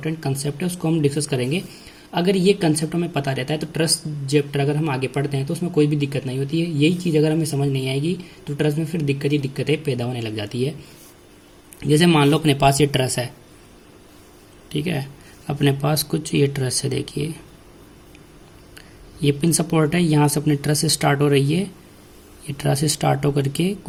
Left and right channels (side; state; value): both; identical; correlation 1.00